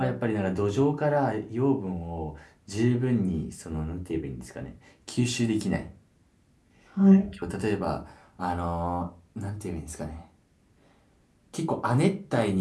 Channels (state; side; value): identical; both; correlation 1.00